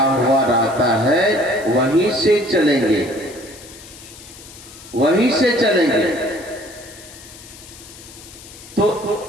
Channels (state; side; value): noise; left; hiss, 18 dB below the sound